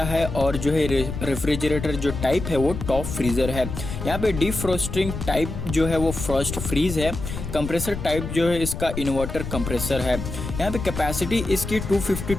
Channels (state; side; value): noise; left; rumble, 6 dB below the sound